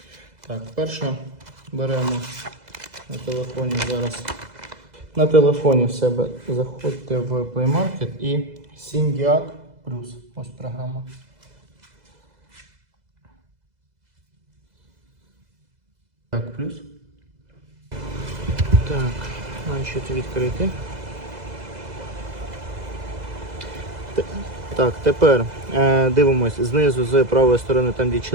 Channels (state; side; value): late; left; 2.0 ms